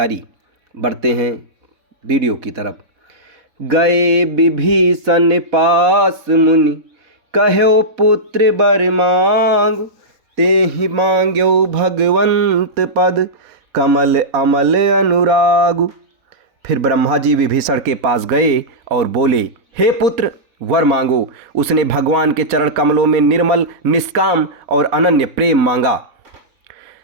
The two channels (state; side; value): late; left; 4.2 ms